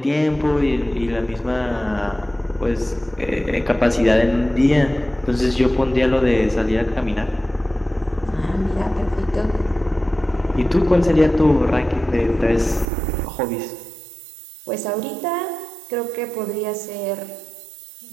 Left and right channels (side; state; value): left; drops out; at 12.9 s